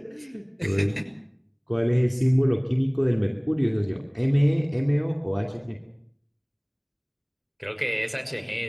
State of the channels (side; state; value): both; identical; correlation 1.00